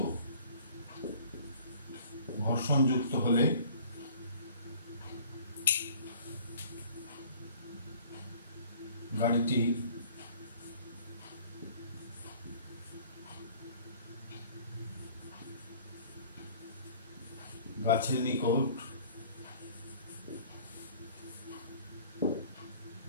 যুক্ত হলে গাড়িটি গাছের নিকট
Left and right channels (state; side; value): inverted; both; correlation -0.51